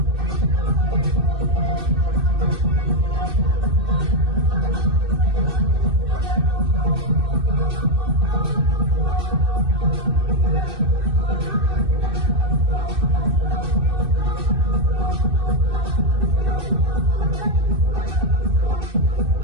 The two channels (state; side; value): late; left; 2.6 ms